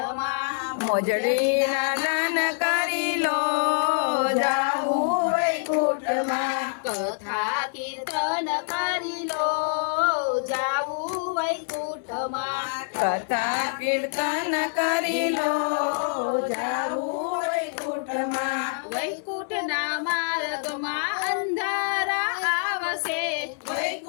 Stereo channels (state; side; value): silent; right; 61 dB below the other